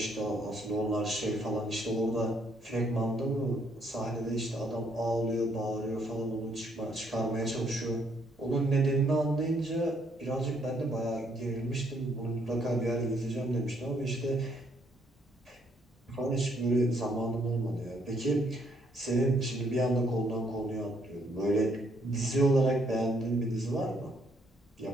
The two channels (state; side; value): normal; both; correlation 0.70